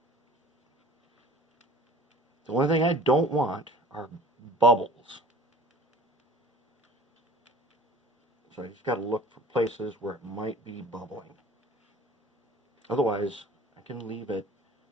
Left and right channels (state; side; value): normal; both; correlation 0.45